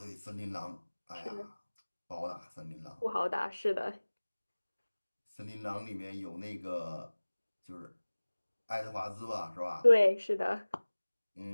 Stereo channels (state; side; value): inverted; both; correlation -1.00